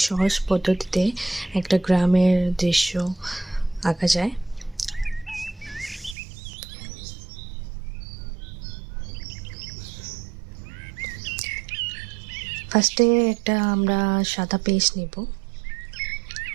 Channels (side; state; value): left; drops out; at 6.2 s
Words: সহজ পদ্ধতিতে একটা গ্রামের দৃশ্য আঁকা যায়। ফার্স্টে একটা আমরা সাদা পেজ নিব,